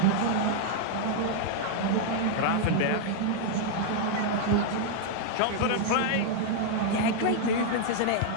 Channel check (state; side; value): different; both; correlation -0.01